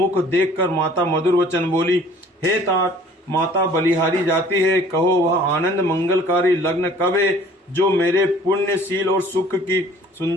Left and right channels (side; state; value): both; normal; correlation 0.52